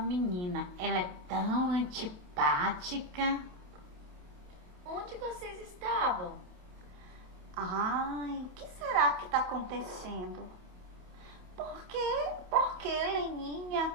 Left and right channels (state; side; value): late; left; 28 ms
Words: Ela é tão antipática. Onde vocês estavam? Ai, o que será que está acontecendo? Por que